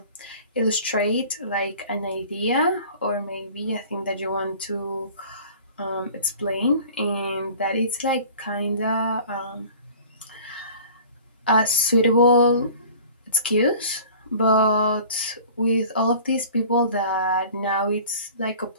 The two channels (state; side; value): inverted; both; correlation -0.45